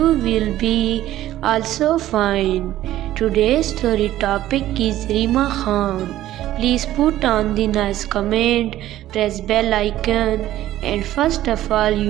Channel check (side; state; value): left; quieter; 13.9 dB